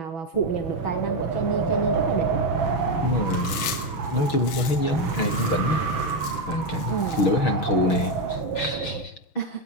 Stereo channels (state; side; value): late; right; 7.1 ms